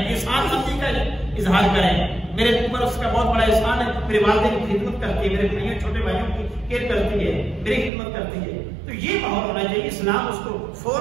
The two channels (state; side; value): drops out; left; at 7.9 s